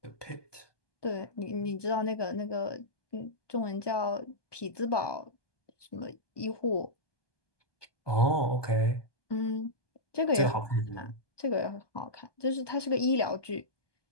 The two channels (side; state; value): right; late; 1.2 ms